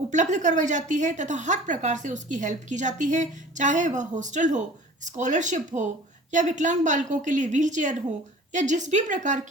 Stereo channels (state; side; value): normal; both; correlation 0.44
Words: करवाई जाती है तथा हर प्रकार से उसकी हेल्प की जाती है, चाहे वह हॉस्टल हो, स्कॉलरशिप हो या विकलांग बालकों के लिए व्हील चेयर हो या जिस भी प्रकार